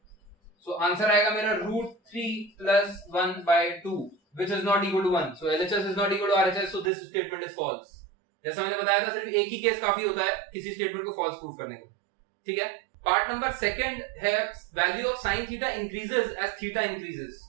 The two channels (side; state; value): left; drops out; at 6.9 s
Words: सो आंसर आएगा मेरा √3 plus 1/2 which is not equal to 1. So LHS is not equal to RHS, so this statement is false. जैसा मैंने बताया था सिर्फ एक ही केस काफी होता है किसी स्टेटमेंट को फॉल्स प्रूफ करने के लिए। ठीक है। पार्ट नंबर सेकंड है value of sine theta increases as theta increases,